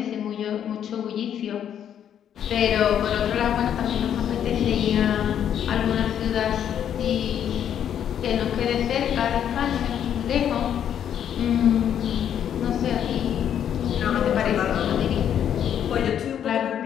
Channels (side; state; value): right; quieter; 9.4 dB